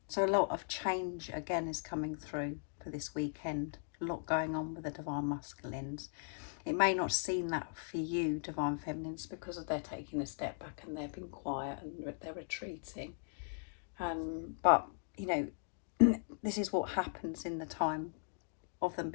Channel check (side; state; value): right; silent; digital silence